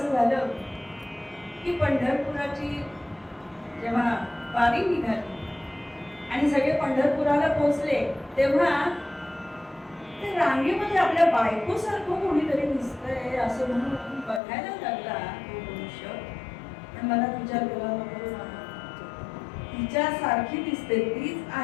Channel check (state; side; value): drops out; right; at 14.4 s